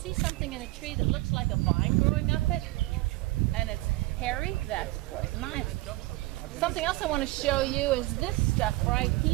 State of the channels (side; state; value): left; quieter; 19.8 dB